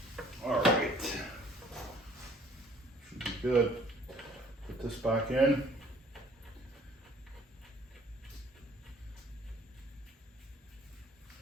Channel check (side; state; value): both; normal; correlation 0.56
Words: right, should be good. Put this back in.